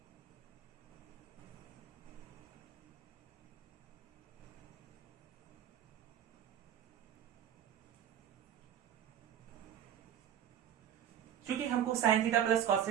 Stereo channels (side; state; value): left; quieter; 9.8 dB